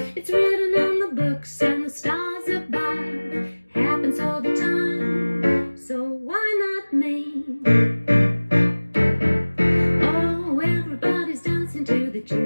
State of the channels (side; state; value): both; inverted; correlation -1.00